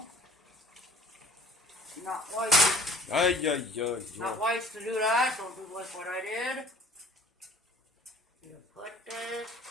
not wise. Not wise to do that. Don't do like what I did. You put this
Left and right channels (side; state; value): both; normal; correlation 0.53